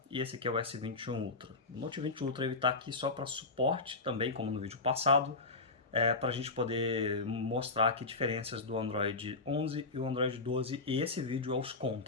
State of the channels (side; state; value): right; quieter; 3.6 dB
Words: E esse aqui é o S21 Ultra. O Note 20 Ultra ele tá aqui só para suporte também, como no vídeo passado, para a gente poder mostrar aqui diferenças do Android 11 e o Android 12, e esse vídeo é os